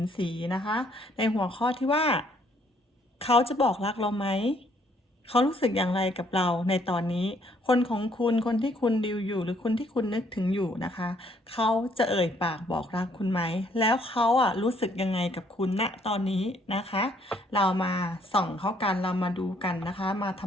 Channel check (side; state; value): both; normal; correlation 0.66